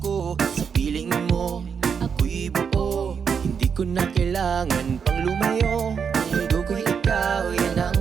sa piling mo ako'y buo. Hindi ko na kailangan pang lumayo, ang mundo ko'y ikaw, yan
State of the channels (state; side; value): quieter; left; 6.6 dB